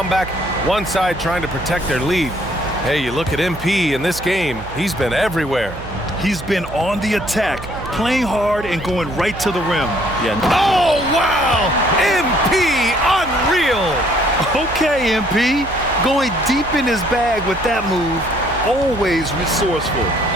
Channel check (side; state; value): right; noise; hum, 13 dB below the sound